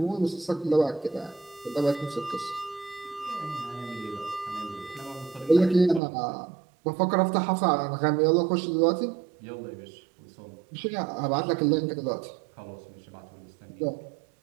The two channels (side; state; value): left; drops out; at 6.0 s